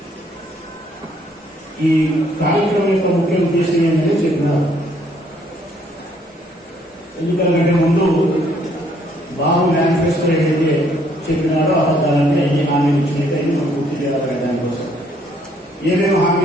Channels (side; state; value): both; normal; correlation 0.66